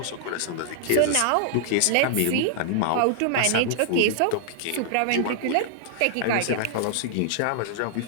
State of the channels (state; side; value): different; both; correlation -0.01